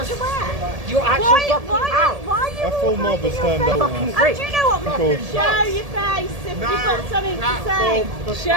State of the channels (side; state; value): left; late; 1.7 ms